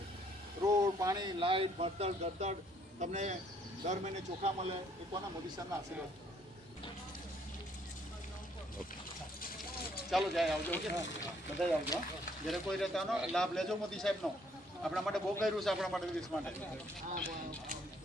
રોડ, પાણી, લાઇટ, ભણતર, ગરતર તમને દર મહિને ચોખા મળે. એ કોના? મોદી સાહેબના આશીર્વાદ. ચાલો જાય, આવજો, બધા આવજો. જ્યારે કોઈ રહેતાનો લાભ લેજો મોદી સાહેબનો. આપણા માટે બહુ કર્યું છે, આપણા માટે, દેશ માટે.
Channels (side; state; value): both; normal; correlation 0.65